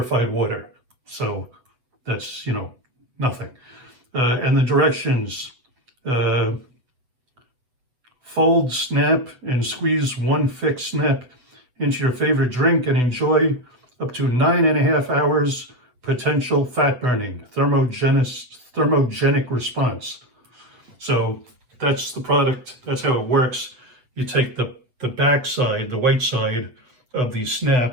water. So that's, nothing. And the directions, fold, snap, and squeeze one pHix snap into your favorite drink and enjoy up to 9.5 hours potential fat burning, thermogenic response. So that's the product, that's how it works. You take the back side, the white side of the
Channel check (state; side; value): late; left; 8.1 ms